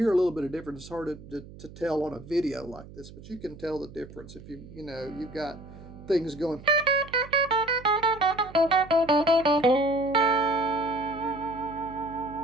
a little bit of difference. It's hard to tell on a video like this, but you can tell the difference if you've got things going.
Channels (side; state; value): right; noise; hum, 17 dB below the sound